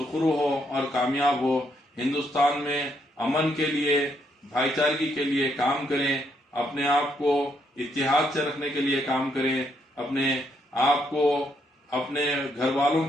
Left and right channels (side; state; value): both; normal; correlation 0.75